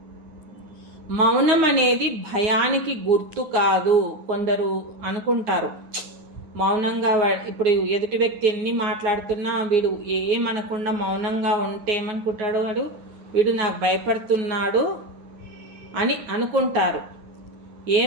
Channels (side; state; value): left; late; 9.6 ms